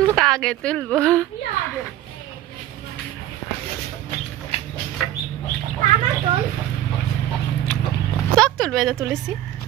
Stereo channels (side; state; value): left; quieter; 13.2 dB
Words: আগে তুলবো। সব তুলবে, এটা তুলেছি।